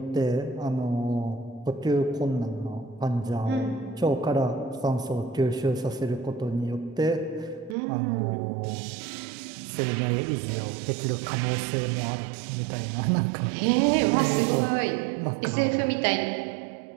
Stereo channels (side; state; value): left; drops out; at 7.8 s